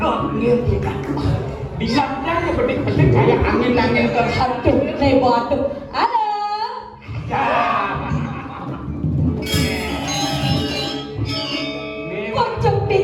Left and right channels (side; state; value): both; identical; correlation 1.00